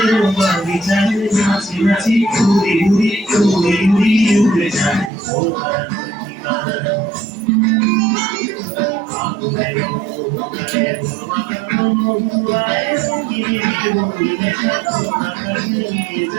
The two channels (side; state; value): left; drops out; at 5.1 s